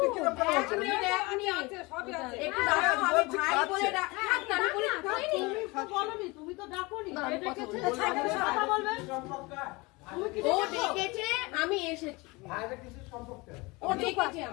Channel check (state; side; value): quieter; right; 24.6 dB